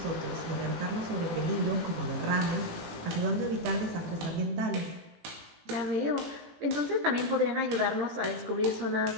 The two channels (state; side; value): late; left; 18 ms